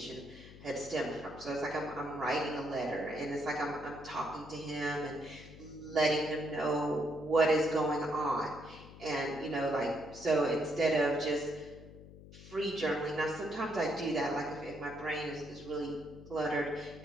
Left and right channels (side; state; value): left; noise; hum, 17 dB below the sound